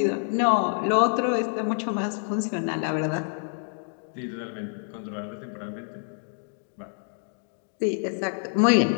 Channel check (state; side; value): silent; right; digital silence